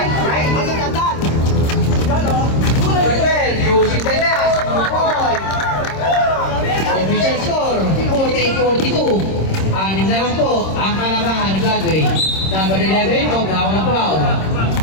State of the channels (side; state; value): right; late; 26 ms